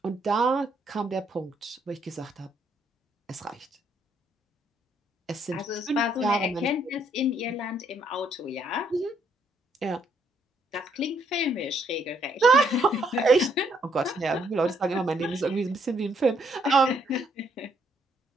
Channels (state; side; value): normal; both; correlation 0.71